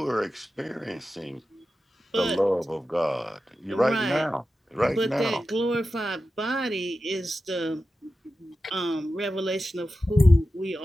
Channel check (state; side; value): normal; both; correlation 0.93